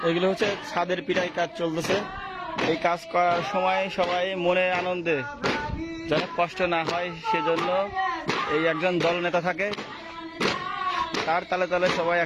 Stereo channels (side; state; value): both; identical; correlation 1.00